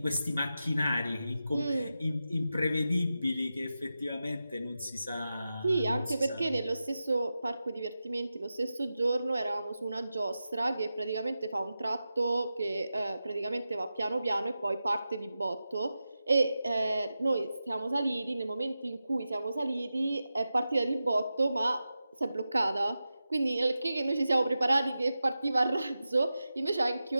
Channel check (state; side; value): inverted; both; correlation -0.92